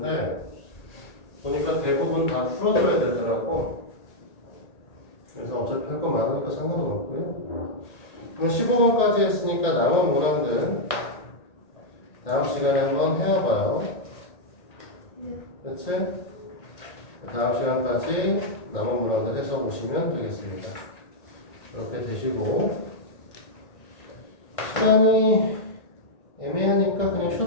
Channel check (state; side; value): late; right; 1.8 ms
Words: 보니까 대부분 다 풀어줘야 되더라고. 그래서 어차피 할 거 많으니까 상관은 없고요. 그럼 15번까지 했으니까 남은 문항들 다음 시간에 한번 해와봐요. 그렇지? 다음 시간까지 남은 문항들 해서 보시면 되겠습니다. 이렇게 되시고 시간이 애매하니까 그냥